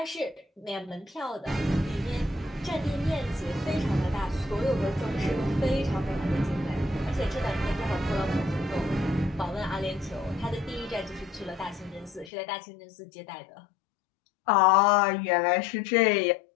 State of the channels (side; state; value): right; drops out; at 12.3 s